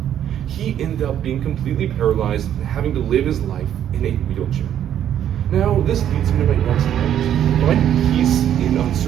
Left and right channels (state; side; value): quieter; left; 10.3 dB